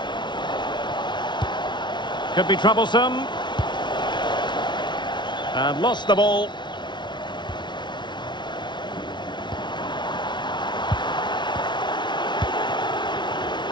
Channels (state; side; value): late; right; 0.22 ms